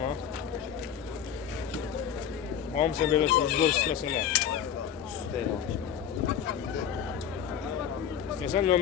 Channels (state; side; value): quieter; right; 8.9 dB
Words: Hamısı belə sizbol istəsələr. Üstəyə almışım. İstəsən